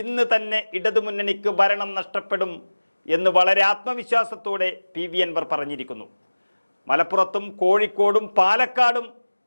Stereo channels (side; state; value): both; inverted; correlation -1.00